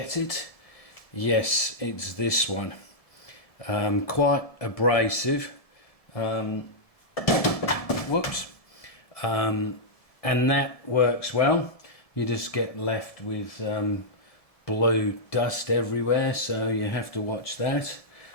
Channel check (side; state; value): right; late; 1.7 ms